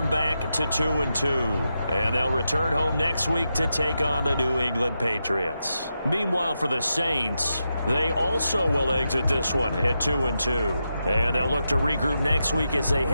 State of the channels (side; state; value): both; inverted; correlation -0.87